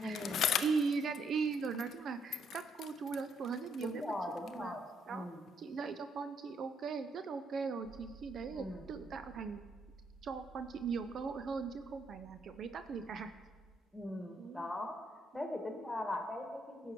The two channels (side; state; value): both; normal; correlation 0.72